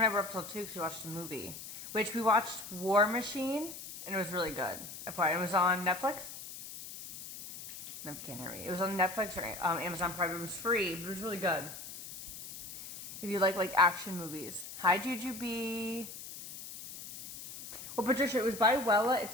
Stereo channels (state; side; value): noise; left; hiss, 11 dB below the sound